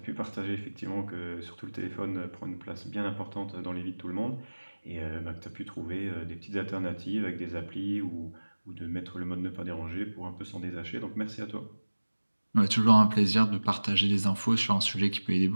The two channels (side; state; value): both; inverted; correlation -1.00